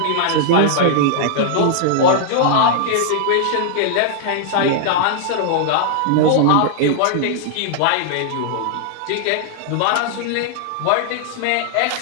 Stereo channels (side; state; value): both; different; correlation -0.01